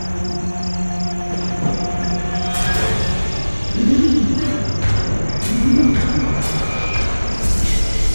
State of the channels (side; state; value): both; inverted; correlation -1.00